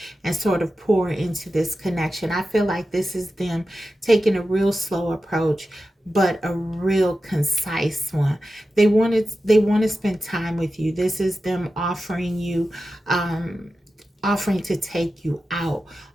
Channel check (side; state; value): both; normal; correlation 0.92